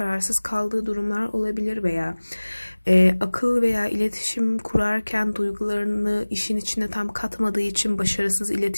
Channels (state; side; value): inverted; both; correlation -1.00